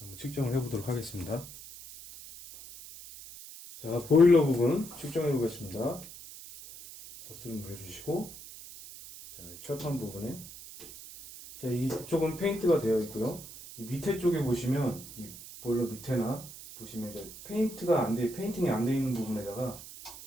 한번 측정을 해보도록 하겠습니다. 자, 보일러 부분 측정해 보겠습니다. 버스를 물려주시고, 자, 철판 부분에, 자, 이쪽은 페인트가 되어 있고요. 이 밑에 쪽에 보시면, 이 보일러 밑에나 보시면 이제 페인팅이 안 돼 있는 부분에다가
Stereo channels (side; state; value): right; noise; hiss, 14 dB below the sound